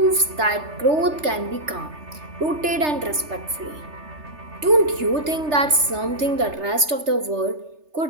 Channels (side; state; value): left; late; 3.3 ms